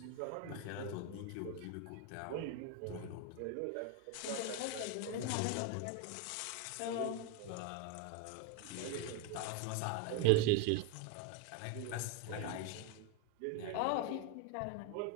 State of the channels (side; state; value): both; different; correlation 0.01